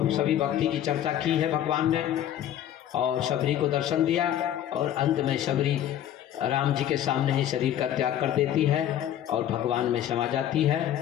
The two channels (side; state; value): right; quieter; 11.1 dB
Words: सभी भक्ति की चर्चा की है भगवान ने, और सबरी को दर्शन दिया। और अंत में सबरी राम जी के सामने ही शरीर का त्याग कर देती है और भगवान में समा जाती